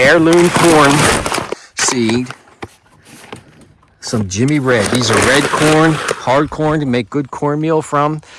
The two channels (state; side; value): identical; both; correlation 1.00